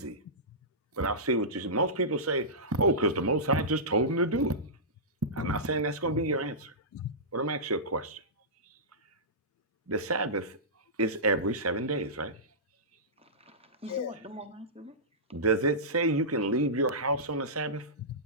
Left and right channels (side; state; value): both; normal; correlation -0.17